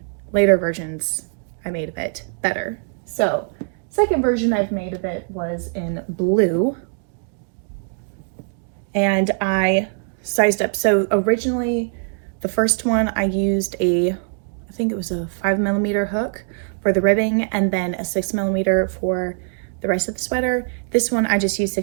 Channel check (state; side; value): silent; left; 58 dB below the other